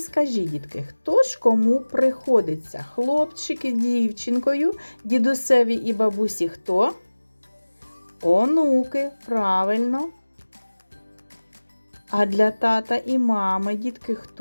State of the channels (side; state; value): both; inverted; correlation -1.00